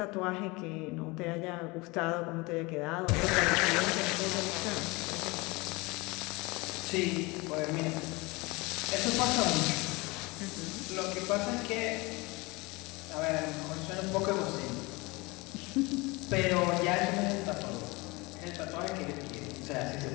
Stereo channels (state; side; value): quieter; right; 24.7 dB